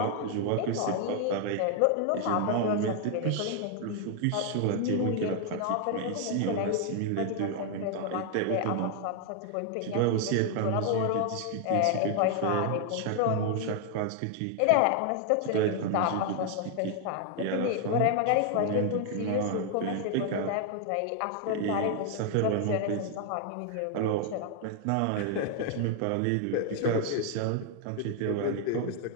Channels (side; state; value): both; different; correlation 0.00